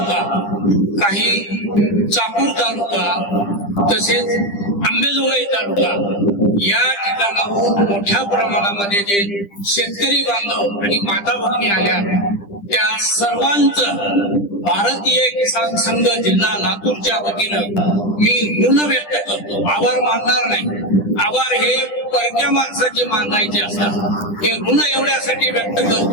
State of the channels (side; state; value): right; late; 10 ms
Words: काही चाकूर तालुका तसेच अंबेजोगाई तालुका या ठिकाणाहून मोठ्या प्रमाणामध्ये जे शेतकरी बांधव आणि माता भगिनी आल्या त्या सर्वांचं भारतीय किसान संघ जिल्हा लातूरच्या वतीनं मी ऋण व्यक्त करतो. आभार मानणार नाही. आभार हे परक्या माणसाचे मानायचे असतात. हे ऋण एवढ्यासाठी व्यक्त